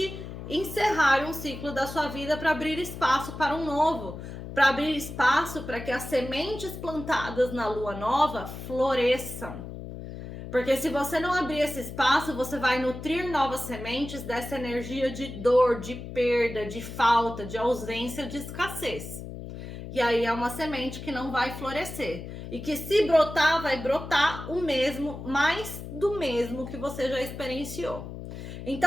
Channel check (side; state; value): left; noise; hum, 10 dB below the sound